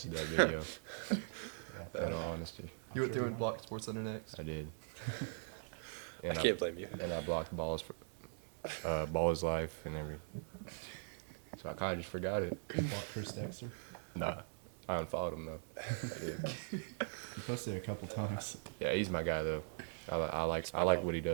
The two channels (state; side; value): silent; left; 50 dB below the other